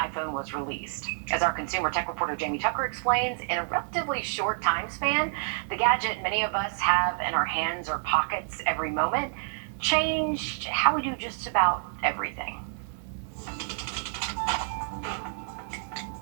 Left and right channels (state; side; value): silent; left; 59 dB below the other